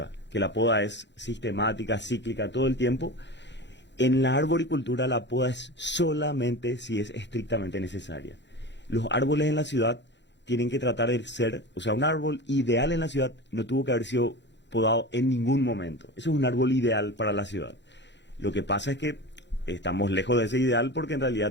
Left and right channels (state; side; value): late; right; 0.52 ms